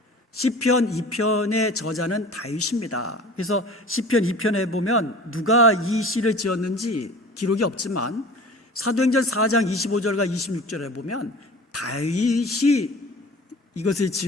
시편 2편의 저자는 다윗입니다. 그래서 시편 2편에 보면 누가 이 시를 지었는지 기록이 없지만 사도행전 4장 25절과 26절에 보면 다윗이 이것을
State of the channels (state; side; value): normal; both; correlation 0.41